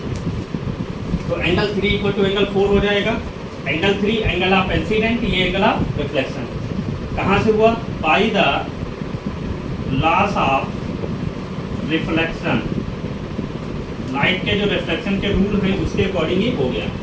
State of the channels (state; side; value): identical; both; correlation 1.00